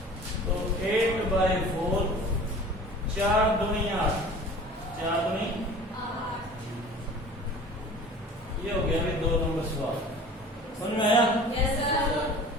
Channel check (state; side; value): normal; both; correlation 0.43